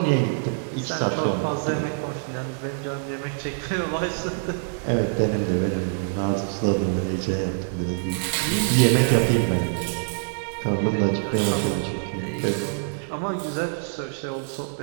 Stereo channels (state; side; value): silent; left; digital silence